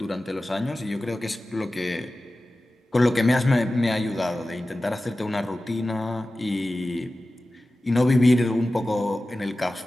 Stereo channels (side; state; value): both; normal; correlation 0.95